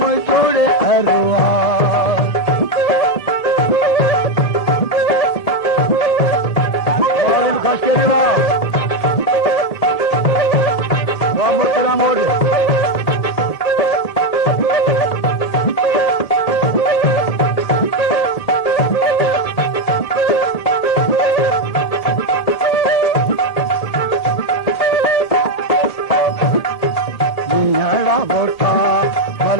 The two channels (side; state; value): right; late; 1.8 ms